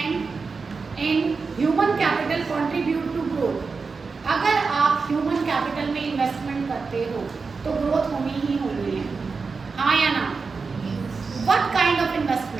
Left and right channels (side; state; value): left; quieter; 4.7 dB